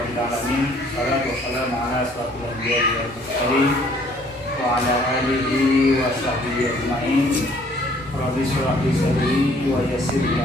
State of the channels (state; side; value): normal; both; correlation 0.60